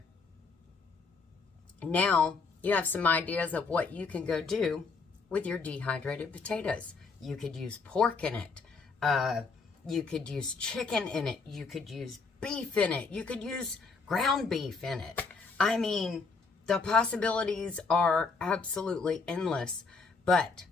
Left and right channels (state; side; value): quieter; right; 4.5 dB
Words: Now, you have some ideas of what you can go do with your dehydrated potatoes. You could use pork in it. You could use chicken in it. You could use beef in it. You could use ground beef in it. I mean, the possibilities are absolutely endless. But